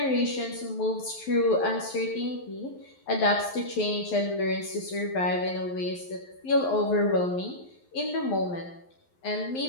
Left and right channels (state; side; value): late; right; 11 ms